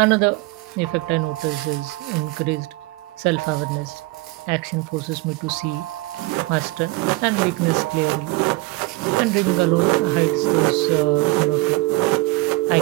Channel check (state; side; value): quieter; left; 21.6 dB